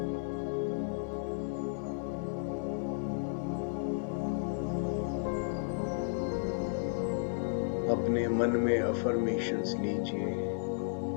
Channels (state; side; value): silent; right; 55 dB below the other